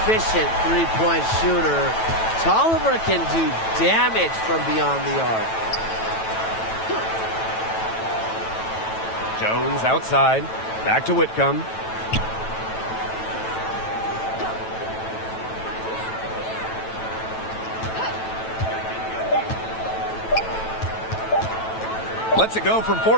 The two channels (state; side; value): late; right; 9.1 ms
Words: three-point shooter. Tolliver can do damage from beyond the arc. Jones outside. Back to Whitcomb. Lets it go from